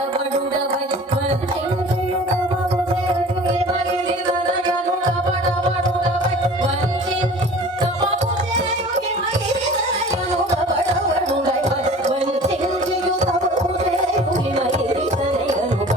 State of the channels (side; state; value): both; normal; correlation 0.43